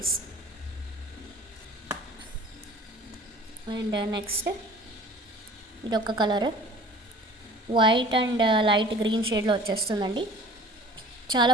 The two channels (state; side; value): normal; both; correlation 0.47